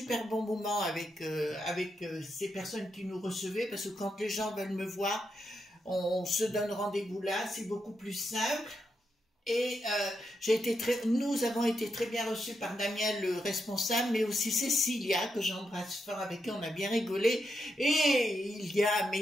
bon moment avec ces personnes qui nous recevaient, parce que quand les gens veulent me voir, on se donne rendez-vous là, c'est beaucoup plus simple. Et nous avons été très bien reçus par Damien, le responsable, mais aussi Cécilia, que j'embrasse fort, avec qui on a bien rigolé. Et il y a,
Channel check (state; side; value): normal; both; correlation 0.83